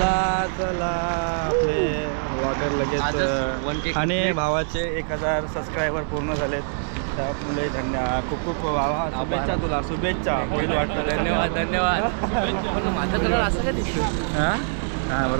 आपले व्लॉगर लगेच. आणि भावाचे 1000 सबस्क्रायबर पूर्ण झालेत, त्यामुळे धन्यवाद. खूप शुभेच्छा तुला. शुभेच्छा. होईल वाटतं. धन्यवाद. माझा कलर असं काय दिसतो? हां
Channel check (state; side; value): silent; left; digital silence